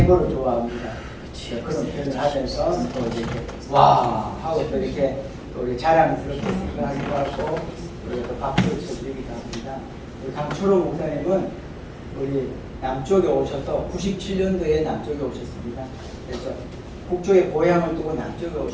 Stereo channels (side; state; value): both; identical; correlation 1.00